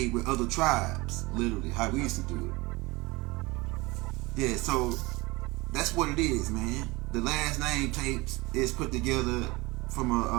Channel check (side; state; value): left; quieter; 23.0 dB